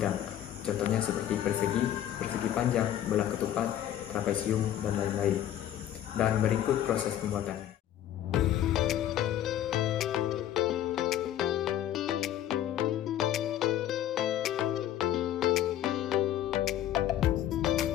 Contohnya seperti persegi, persegi panjang, belah ketupat, trapesium, dan lain-lain. Dan berikut proses pembuatannya.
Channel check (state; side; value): quieter; right; 11.6 dB